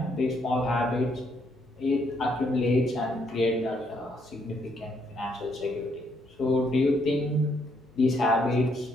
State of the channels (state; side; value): noise; left; hum, 30 dB below the sound